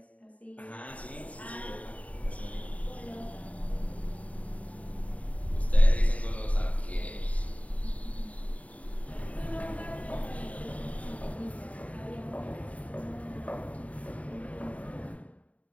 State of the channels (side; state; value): right; late; 0.068 ms